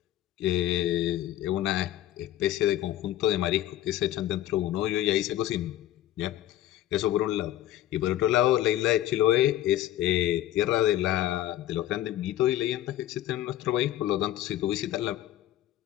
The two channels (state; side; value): quieter; right; 13.5 dB